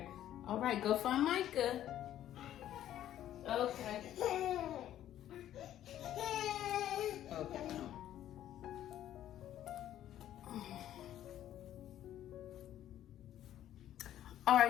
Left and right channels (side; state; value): right; quieter; 11.9 dB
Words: All right, go find Micah. Okay. Okay. All